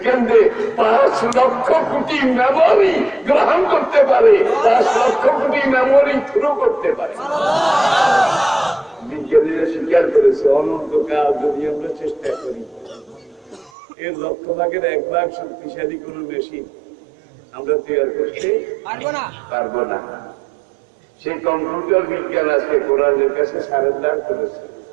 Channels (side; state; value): left; drops out; at 13.7 s